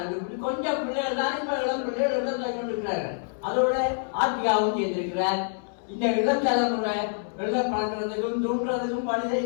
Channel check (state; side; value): silent; right; 60 dB below the other